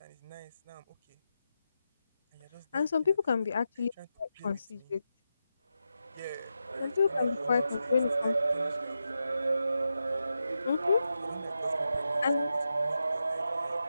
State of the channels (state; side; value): inverted; both; correlation -0.88